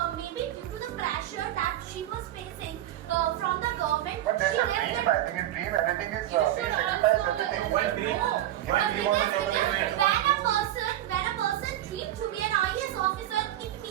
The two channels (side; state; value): left; quieter; 13.3 dB